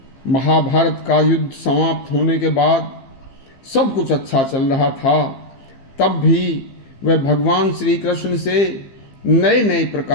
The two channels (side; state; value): right; late; 15 ms